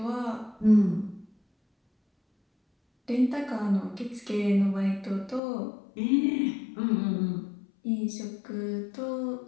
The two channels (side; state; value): right; drops out; at 5.4 s